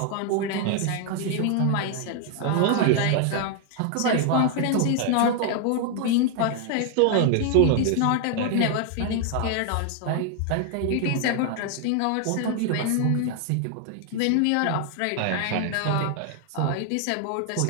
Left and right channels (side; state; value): both; different; correlation 0.00